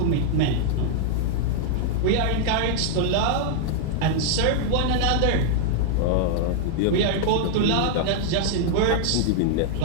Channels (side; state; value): both; different; correlation -0.01